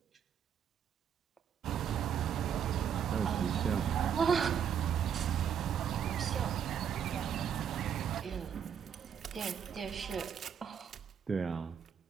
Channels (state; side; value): quieter; left; 8.1 dB